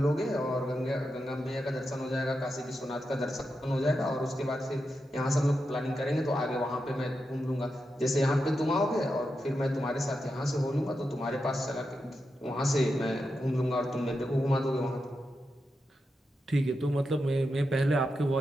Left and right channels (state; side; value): normal; both; correlation 0.87